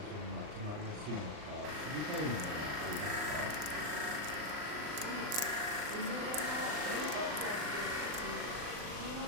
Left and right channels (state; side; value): late; left; 39 ms